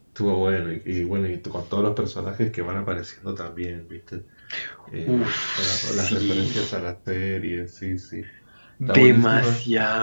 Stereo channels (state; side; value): inverted; both; correlation -1.00